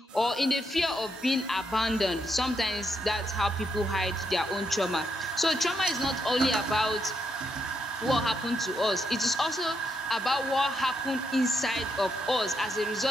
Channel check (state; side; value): normal; both; correlation 0.79